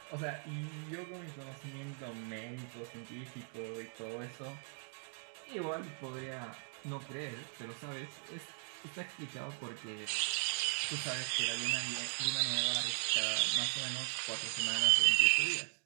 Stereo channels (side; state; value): left; silent; 52 dB below the other